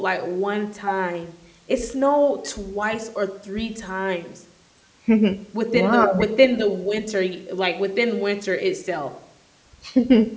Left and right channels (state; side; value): identical; both; correlation 1.00